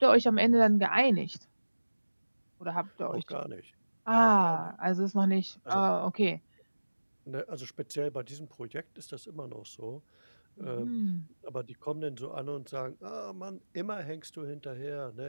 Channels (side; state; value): both; inverted; correlation -1.00